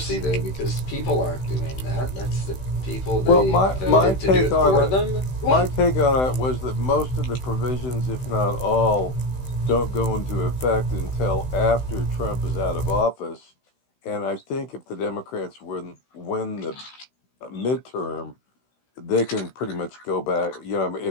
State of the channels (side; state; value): right; late; 16 ms